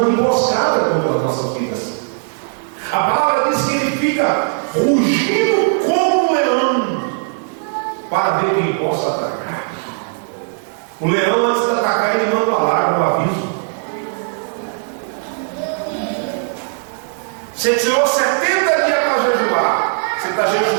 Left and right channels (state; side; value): silent; left; digital silence